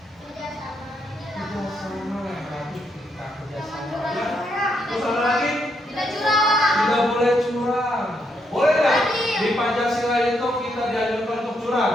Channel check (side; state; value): both; normal; correlation 0.77